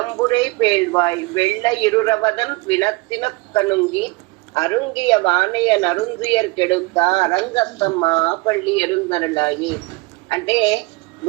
பேழ்வாய் வெள்ள இருரவதன் வினத்தின கணுங்கி அருங்கிய வானைய நருந்துயர் கெடுத்த అరంగస్తమ్మా పళ్ళి ఎరుందరలాయి. అంటే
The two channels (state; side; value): quieter; left; 24.0 dB